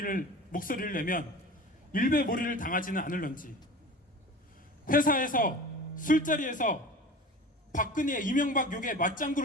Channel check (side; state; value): both; normal; correlation 0.37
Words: 목소리를 내면 일배몰이를 당하지는 않을런지, 회사에서 술자리에서 박근혜 이명박 욕에